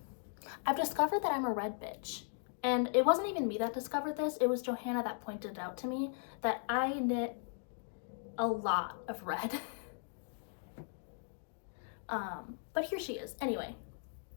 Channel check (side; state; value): right; silent; digital silence